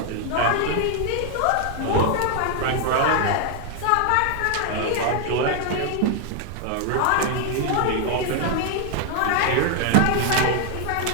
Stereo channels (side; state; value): both; different; correlation 0.00